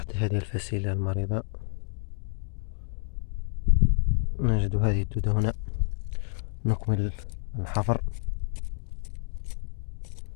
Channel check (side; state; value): right; silent; 59 dB below the other